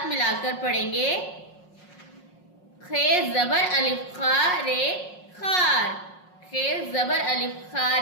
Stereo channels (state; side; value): late; right; 5.5 ms